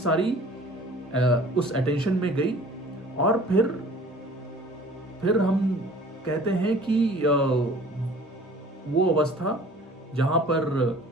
उस अटेंशन में गई और फिर हम कहते हैं कि वो अवस्था जहाँ पर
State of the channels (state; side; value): normal; both; correlation 0.49